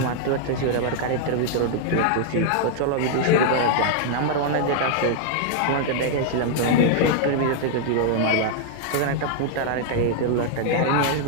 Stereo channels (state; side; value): different; both; correlation -0.01